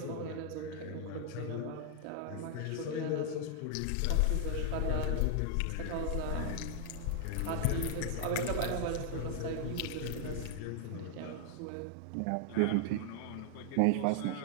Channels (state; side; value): different; both; correlation 0.00